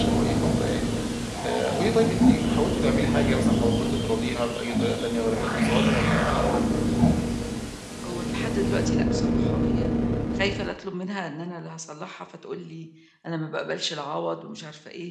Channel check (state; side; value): identical; both; correlation 1.00